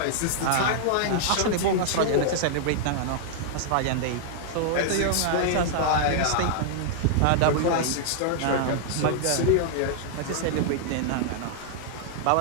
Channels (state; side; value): different; both; correlation -0.01